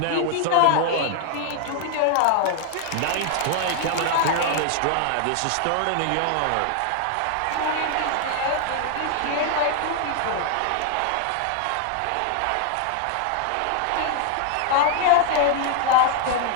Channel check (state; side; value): different; both; correlation 0.00